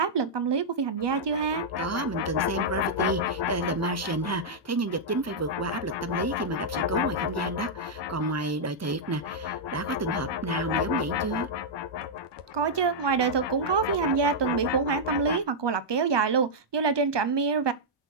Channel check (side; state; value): both; normal; correlation -0.06